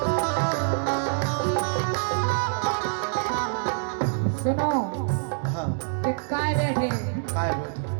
सुनो हाँ कि काय बैठे काय बैठी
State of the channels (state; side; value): silent; left; digital silence